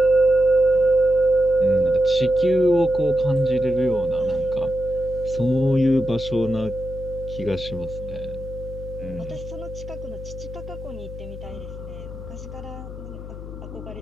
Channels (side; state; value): left; noise; hum, 11 dB below the sound